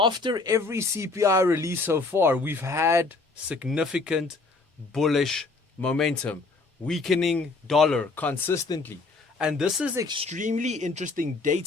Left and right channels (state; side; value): quieter; right; 3.7 dB